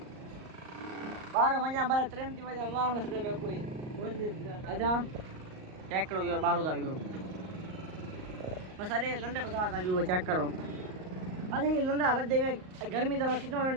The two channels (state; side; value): late; left; 38 ms